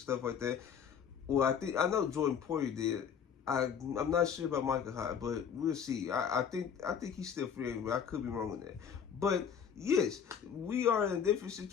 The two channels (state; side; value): quieter; right; 7.6 dB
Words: like that. Well, I know Jordan Poyer did. I'm not sure about Micah Hyde, but we'll see. I think he's still free, but I could be wrong on that. But yes, we are in a different